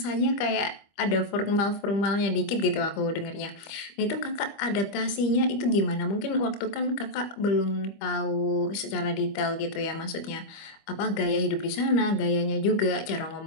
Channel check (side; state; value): right; late; 25 ms